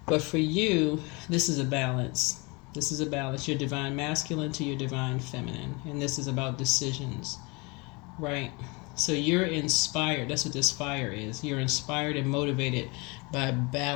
But for you, this is a balance. This is a balance. Your divine masculine to your divine feminine. And this is about decisions, right? So you're inspired. That's what this fire is. You're inspired and motivated by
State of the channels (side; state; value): right; quieter; 27.8 dB